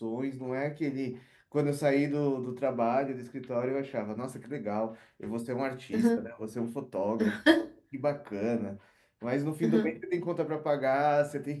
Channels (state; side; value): identical; both; correlation 1.00